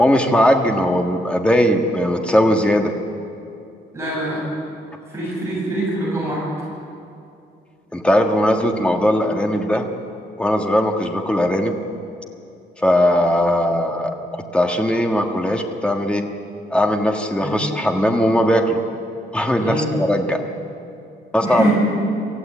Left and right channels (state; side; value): normal; both; correlation 0.79